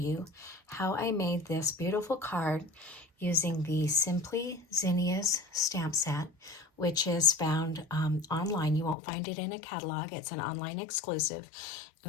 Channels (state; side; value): drops out; right; at 9.0 s